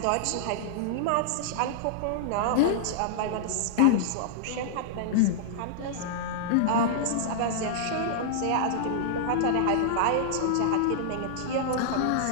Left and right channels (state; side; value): different; both; correlation -0.01